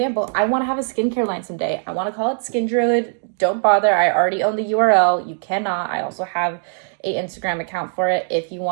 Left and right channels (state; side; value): silent; left; 66 dB below the other